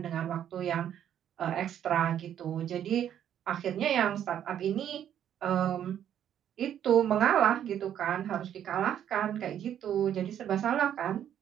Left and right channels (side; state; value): left; quieter; 10.1 dB